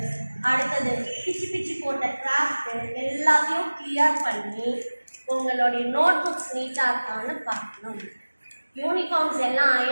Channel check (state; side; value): inverted; both; correlation -1.00